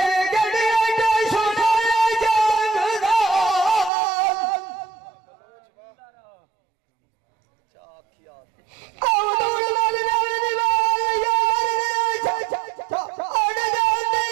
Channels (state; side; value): drops out; left; at 3.9 s